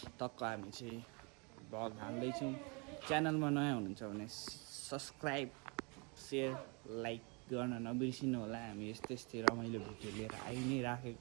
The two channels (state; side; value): quieter; left; 31.3 dB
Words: टक्क हामी चाहिँ भ्लग हाल्दैछौँ। च्यानलमा नयाँ हुनुहुन्छ भने सब्सक्राइब सेयर लाइक गर्न नबिर्सिनु होला। हामी यस्तै यस्तै रमाइलो भिडियो लिएर आइ नै